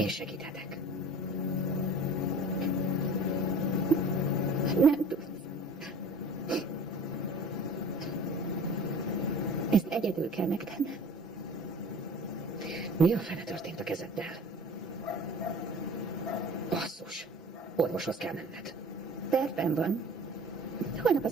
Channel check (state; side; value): normal; both; correlation 0.44